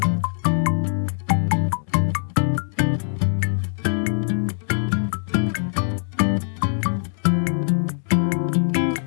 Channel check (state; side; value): silent; right; digital silence